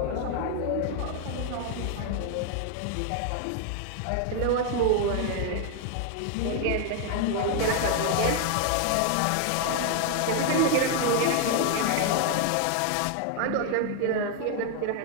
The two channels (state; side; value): different; both; correlation 0.00